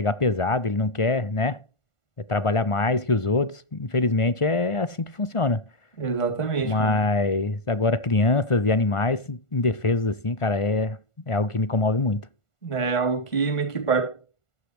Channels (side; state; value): right; late; 1.5 ms